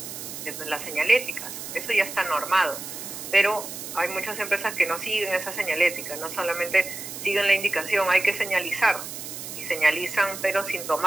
las señaléticas. Eso ya está normado. Pero hay muchas empresas que no siguen esa señalética, no solamente siguen la indicación, hay que señalizar, y señalizan pero sin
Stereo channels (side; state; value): right; noise; hiss, 9 dB below the sound